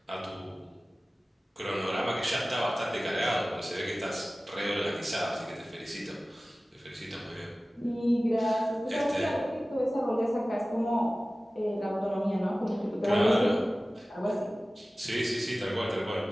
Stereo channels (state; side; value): normal; both; correlation 0.97